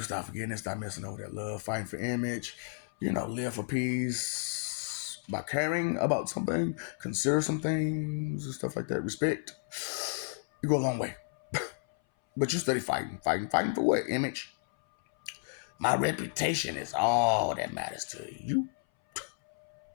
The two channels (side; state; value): right; silent; 56 dB below the other